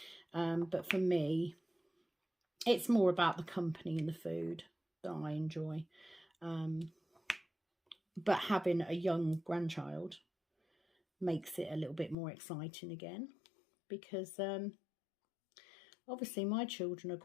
But for me, it's more about the company and the food that I enjoy. But having a young grandchild makes it a little bit more exciting again, because obviously my children are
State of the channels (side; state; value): right; drops out; at 12.2 s